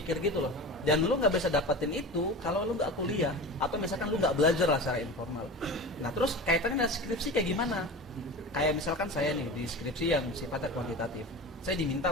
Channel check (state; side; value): normal; both; correlation 0.32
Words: gitu loh. Dan lu nggak bisa dapetin itu kalau lu nggak kuliah atau misalkan lu nggak belajar lah secara informal. Nah terus kaitannya dengan skripsi kayak gimana? Kayak misalkan saya nih di skripsi yang sifatnya kuantitatif, saya diminta